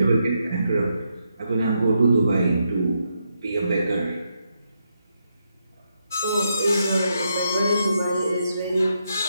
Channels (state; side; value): inverted; both; correlation -0.81